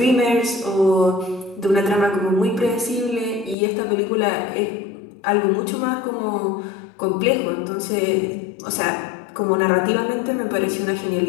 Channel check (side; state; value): right; drops out; at 3.6 s